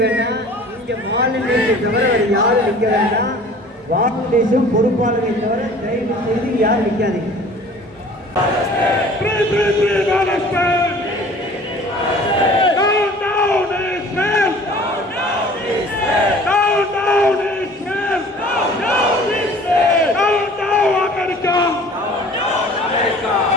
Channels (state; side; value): normal; both; correlation 0.47